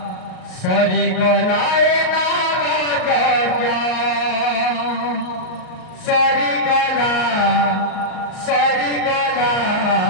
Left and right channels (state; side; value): late; right; 38 ms